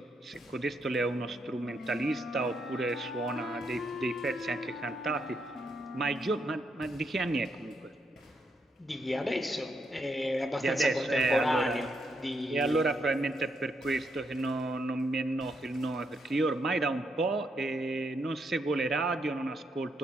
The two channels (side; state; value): both; normal; correlation 0.78